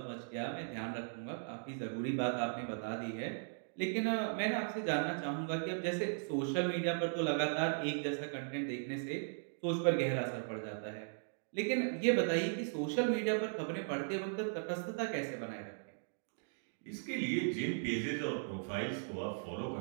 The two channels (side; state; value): left; silent; digital silence